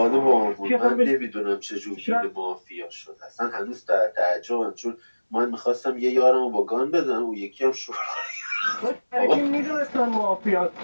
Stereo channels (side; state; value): both; inverted; correlation -1.00